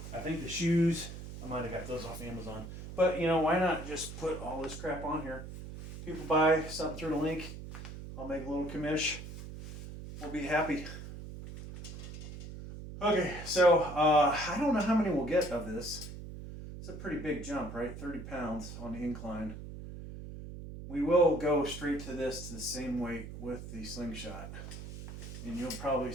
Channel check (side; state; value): right; noise; hum, 10 dB below the sound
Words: I think the shoes, I might have got those off Amazon. But, you know, why not just put all this crap on here? People buy something through the link. I'll make a little commish. We'll be happy. Okay, so I don't know how many we'll get of this. It's a pretty big jump, right? 30 pounds on the incline. We will go straight to this, to the same weight with the slingshot. And you'll probably